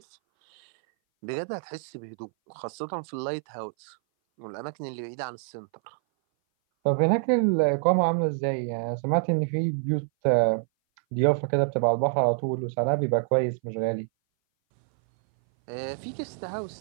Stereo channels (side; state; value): left; silent; 58 dB below the other